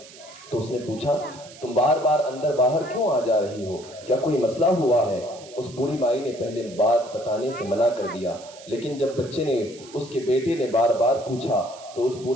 تو اس نے پوچھا تم بار بار اندر باہر کیوں آ جا رہی ہو، کیا کوئی مسئلہ ہوا ہے؟ اس بوڑھی مائی نے پہلے بات بتانے سے منع کر دیا، لیکن جب بچے نے اس کے بیٹے نے بار بار پوچھا تو اس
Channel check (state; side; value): noise; right; hiss, 20 dB below the sound